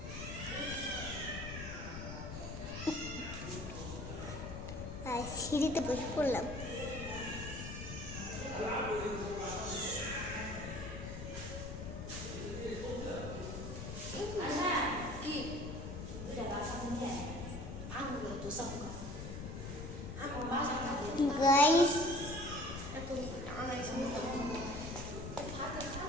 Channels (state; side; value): noise; left; rumble, 7 dB below the sound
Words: সিঁড়িতে বসে পড়লাম। কি udah basah punya aku gak tuh sama aku basah tadi guys aku anak sama